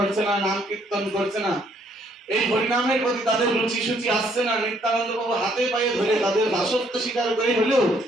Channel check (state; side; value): normal; both; correlation 0.67